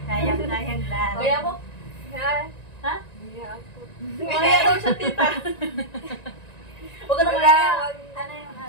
Kayang lang. Kaya mo? Ha? Kaya daw siya tita. Huwag ka na kaya. Ano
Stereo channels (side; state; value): right; late; 1.9 ms